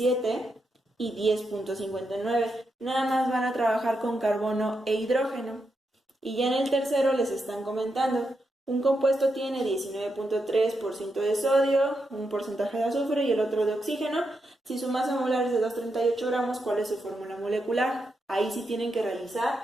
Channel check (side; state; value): both; normal; correlation 0.84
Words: y 10.59. Nada más van a trabajar con carbono e hidrógeno. Y ya en el tercero les están comentando, un compuesto tiene 19.3% de sodio, un porcentaje de azufre y el otro de oxígeno. Si su masa molar es de 238 gramos, ¿cuál es su fórmula molecular? Ahí sí tienen que